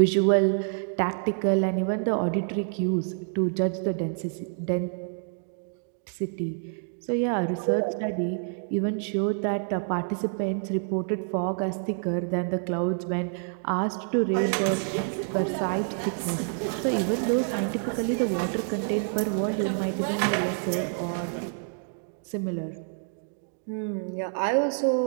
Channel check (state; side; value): silent; left; 60 dB below the other